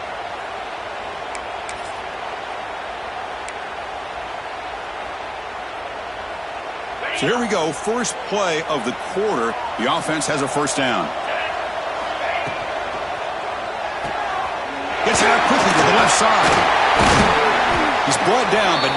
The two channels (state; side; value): identical; both; correlation 1.00